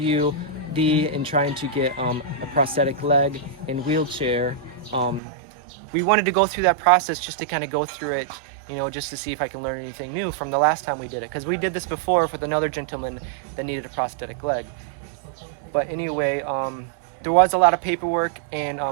and trying to get a prosthetic leg and wheelchair. We wanted to go through that process just to kind of go through it, just to see if I can learn anything new from the last time we did it. Because we did this before with another gentleman that needed a prosthetic leg. But anyway, there was a lot of paperwork, and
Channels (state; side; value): drops out; left; at 5.2 s